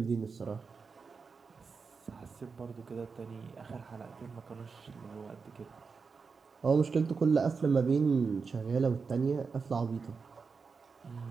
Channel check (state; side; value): quieter; left; 5.1 dB